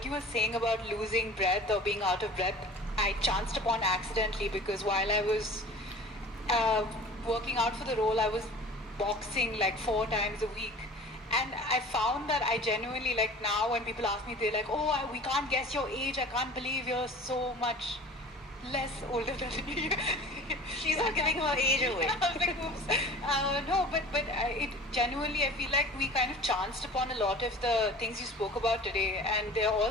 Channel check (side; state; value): both; normal; correlation 0.42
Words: you were saying about losing breath or being out of breath, I chanced upon accidentally, because while I was working out for the role, I was boxing like 4 times a week. And I found that I genuinely, like now when people ask me, they're like, oh, we can't guess your age. I can't believe you're so much less older than me. She's not giving her age away. I was like, oops. No, but it genuinely, I feel like we kind of chanced upon a lot of the things you spoke about today, and they're all